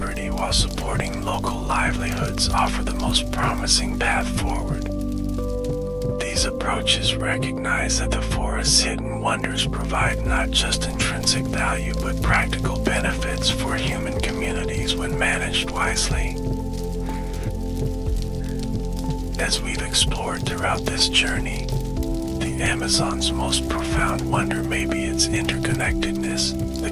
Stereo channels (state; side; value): identical; both; correlation 1.00